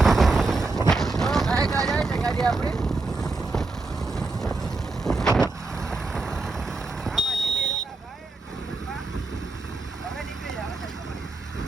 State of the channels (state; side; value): quieter; left; 3.5 dB